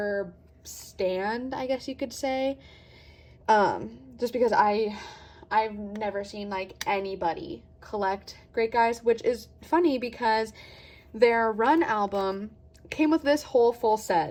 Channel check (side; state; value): both; identical; correlation 1.00